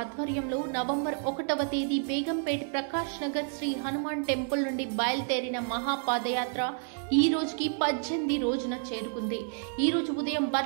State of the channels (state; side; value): silent; left; 58 dB below the other